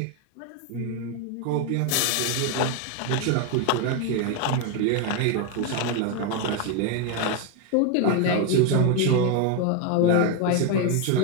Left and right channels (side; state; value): both; different; correlation 0.01